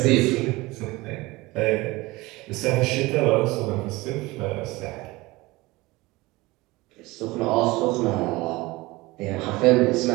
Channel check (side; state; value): left; quieter; 21.3 dB